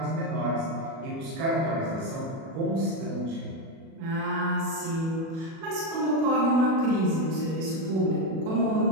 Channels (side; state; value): left; late; 37 ms